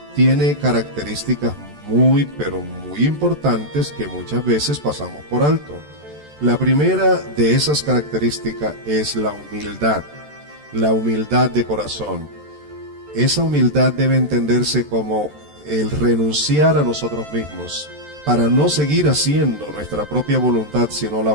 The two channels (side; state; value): left; late; 13 ms